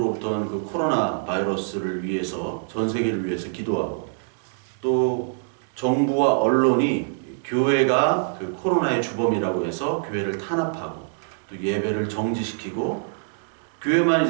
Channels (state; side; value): silent; left; digital silence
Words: 온 그 코로나 바이러스를 위해서 전 세계를 위해서 기도하고 또 정부와 언론이 교회가 그 코로나의 주범이라고 해서 교회를 탄압하고 또 예배를 정지시키고 교회만